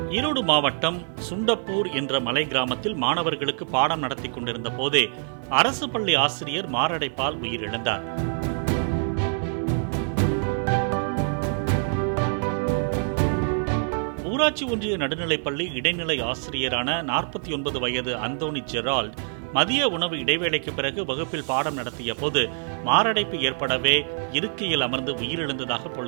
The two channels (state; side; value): silent; left; 61 dB below the other